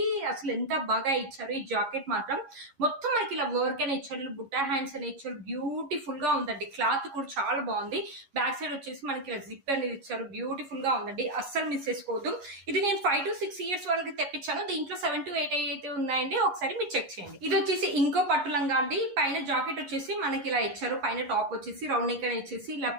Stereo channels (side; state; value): left; late; 11 ms